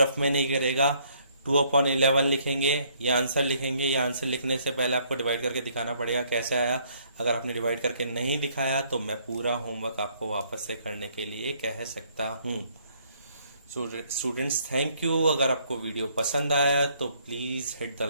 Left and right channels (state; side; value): inverted; both; correlation -0.66